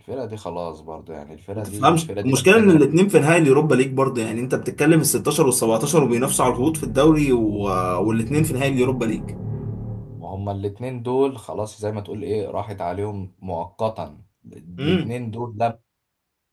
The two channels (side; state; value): both; identical; correlation 1.00